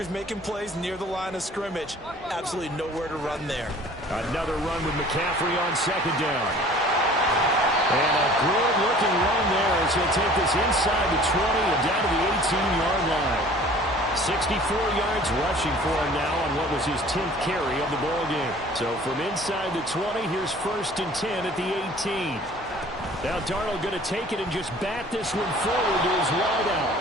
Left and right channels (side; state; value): both; normal; correlation 0.49